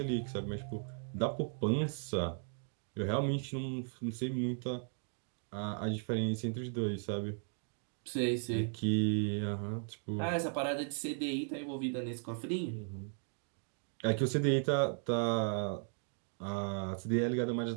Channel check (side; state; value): left; silent; 53 dB below the other